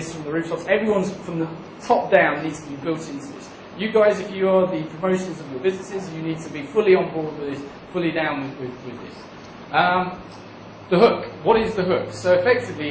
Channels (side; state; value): both; identical; correlation 1.00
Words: from the rooftops. Everyone's from the top down needs to be built into this. You guys, if you are the promotions of your businesses, you need to be fully on board with this, fully down with this. The hook. What is the hook? So